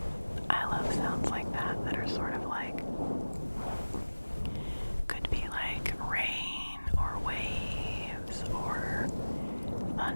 I love sounds like that are sort of like, could be like rain or waves or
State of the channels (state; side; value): inverted; both; correlation -1.00